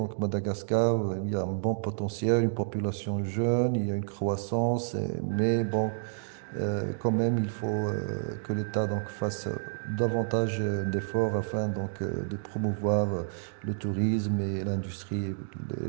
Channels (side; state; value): left; silent; digital silence